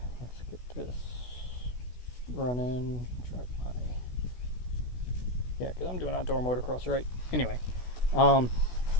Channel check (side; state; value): right; late; 16 ms